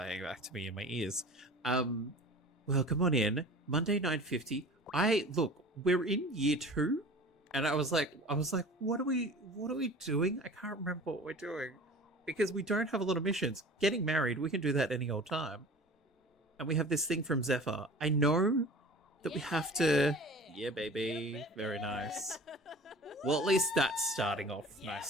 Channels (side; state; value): both; normal; correlation 0.41